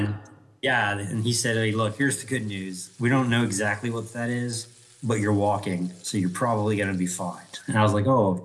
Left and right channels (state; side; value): identical; both; correlation 1.00